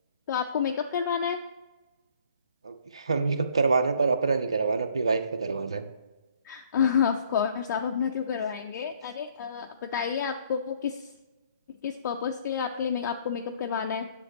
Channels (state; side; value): inverted; both; correlation -0.61